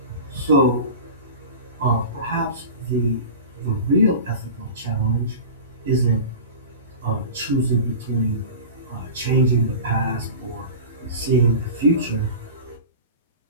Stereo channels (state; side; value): inverted; both; correlation -0.33